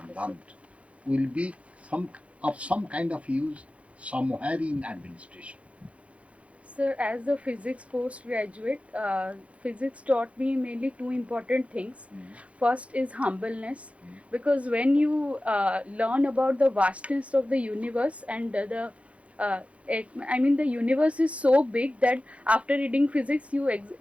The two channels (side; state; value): left; late; 0.063 ms